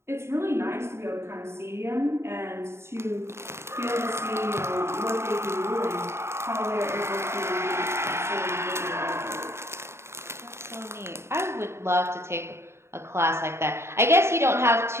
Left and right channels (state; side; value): late; left; 0.13 ms